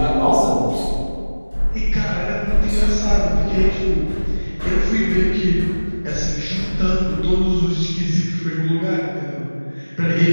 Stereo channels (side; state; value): both; inverted; correlation -1.00